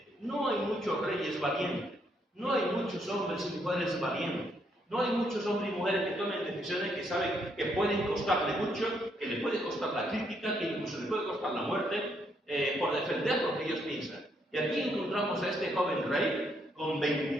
No hay muchos reyes valientes, no hay muchos hombres y mujeres valientes, no hay muchos hombres y mujeres que tomen decisiones que saben que pueden costarle mucho, que le puede costar la crítica, que incluso le puede costar la muerte, por defender lo que ellos piensan. Y aquí encontramos a este joven rey, con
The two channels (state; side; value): normal; both; correlation 0.74